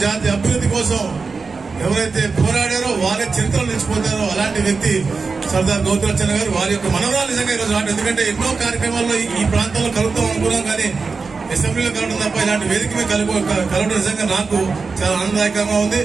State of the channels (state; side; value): quieter; left; 4.6 dB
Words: జాతి అభివృద్ధి కోసం ఎవరైతే పోరాడారో వారే చరిత్రలు నిలిచిపోతారో అలాంటి వ్యక్తి సర్దార్ గౌతులచ్చన్న గారు. వారి యొక్క మనవరాలు నిజంగా ఈరోజు రావడం, ఎందుకంటే ఎన్నో కార్యక్రమాల్లో ఈ ప్రాంతంలో కలుగుతాం అనుకున్నాం, కానీ అసెంబ్లీలో కలవడం తప్ప ఇలాంటి వేదిక మీద కలవడం నిజంగా నాకు చాలా ఆనందదాయకంగా ఉంది.